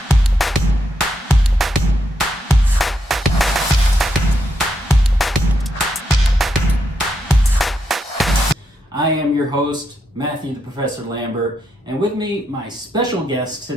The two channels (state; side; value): normal; both; correlation 0.81